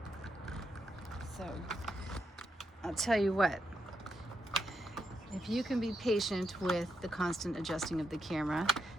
So I'll tell you what, if you can be patient with the constant adjusting of the camera,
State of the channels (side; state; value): both; normal; correlation 0.82